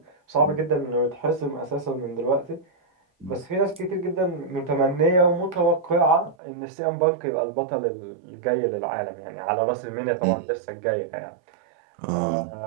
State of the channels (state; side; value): drops out; left; at 6.4 s